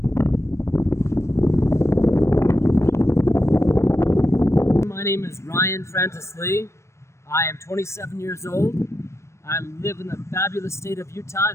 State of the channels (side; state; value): right; late; 0.13 ms